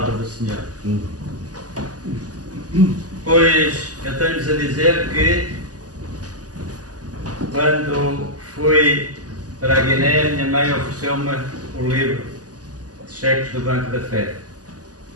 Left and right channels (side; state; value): left; late; 0.67 ms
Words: do Senhor. Pois eu tenho-vos a dizer que quando fui para a Guiné, minha mãe ofereceu-me o livro de cheques do Banco da Fé